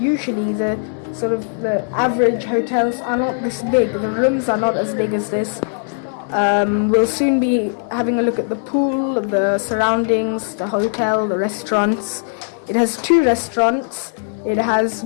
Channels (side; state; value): right; silent; digital silence